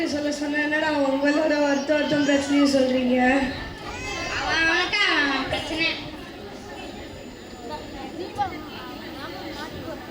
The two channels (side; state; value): both; identical; correlation 1.00